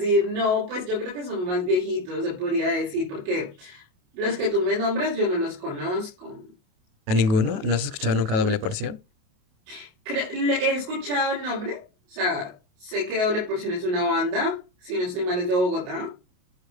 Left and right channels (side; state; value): left; late; 28 ms